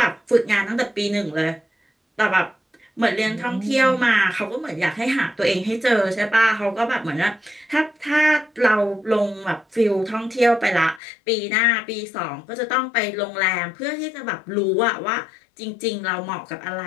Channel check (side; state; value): right; drops out; at 11.0 s